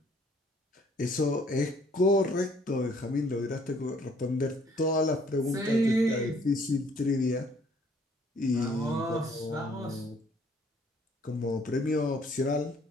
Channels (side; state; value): both; normal; correlation 0.61